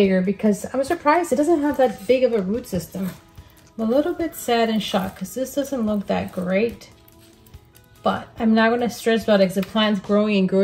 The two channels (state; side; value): identical; both; correlation 1.00